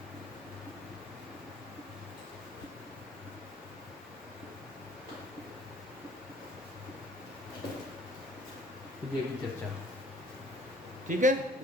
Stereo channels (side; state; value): both; normal; correlation 0.56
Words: विजय की चर्चा, ठीक है।